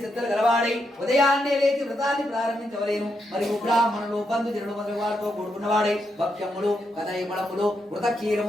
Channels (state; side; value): normal; both; correlation 0.82